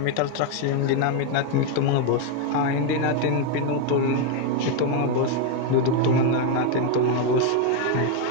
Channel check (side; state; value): both; different; correlation 0.01